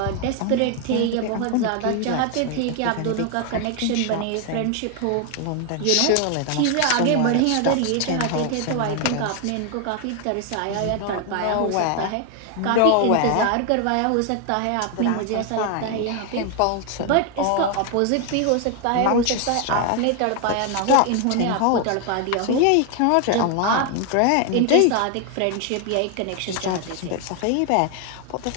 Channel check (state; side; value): different; both; correlation 0.01